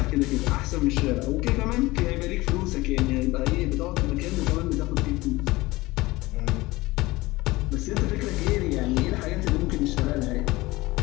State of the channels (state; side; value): quieter; right; 20.3 dB